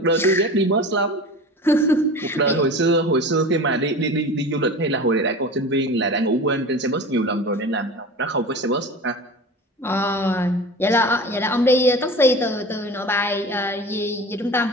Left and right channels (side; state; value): both; normal; correlation 0.34